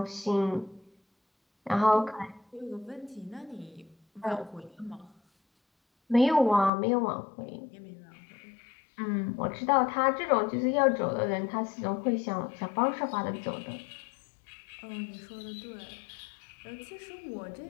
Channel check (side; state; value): right; drops out; at 6.7 s